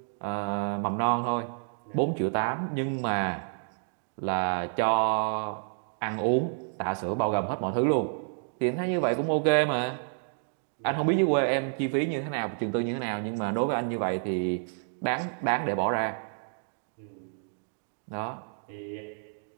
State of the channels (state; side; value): silent; left; digital silence